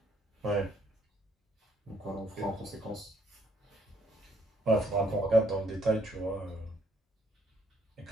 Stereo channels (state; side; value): normal; both; correlation 0.67